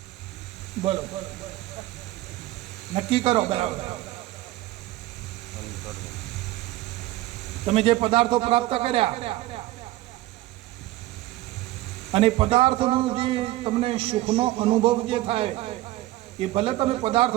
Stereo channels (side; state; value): left; quieter; 17.0 dB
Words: બોલો, નક્કી કરો બરાબર. તમે જે પદાર્થો પ્રાપ્ત કર્યા અને પદાર્થનો જે તમને સુખનો અનુભવ જે થાય એ ભલે તમે